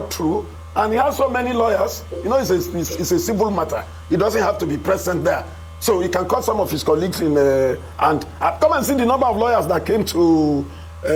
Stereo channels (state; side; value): identical; both; correlation 1.00